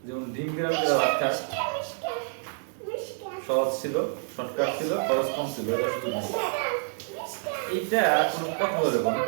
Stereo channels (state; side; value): silent; left; 59 dB below the other